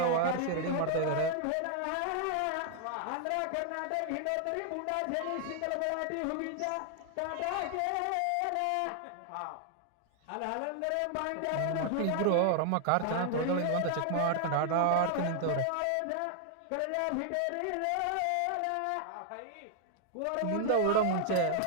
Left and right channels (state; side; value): different; both; correlation 0.00